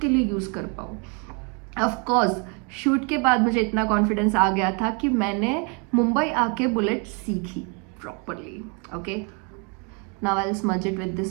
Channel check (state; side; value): quieter; left; 32.7 dB